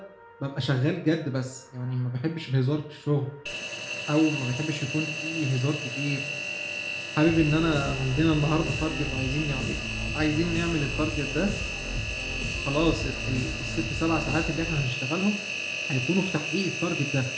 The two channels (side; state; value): both; identical; correlation 1.00